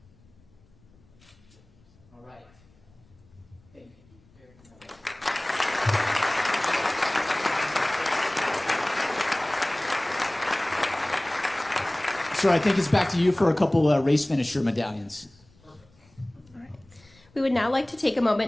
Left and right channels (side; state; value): left; noise; rumble, 30 dB below the sound